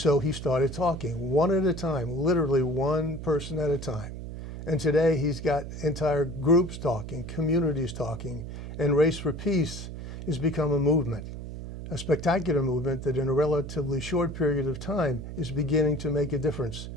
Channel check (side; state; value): right; noise; hum, 9 dB below the sound